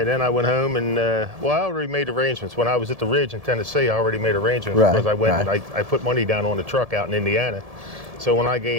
then I went home and, well, I already made arrangements. When I was at the Ridge in Tennessee, I already made arrangements Right, because I went right. and I put money down on the truck out in Indiana. So when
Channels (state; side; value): late; left; 1.7 ms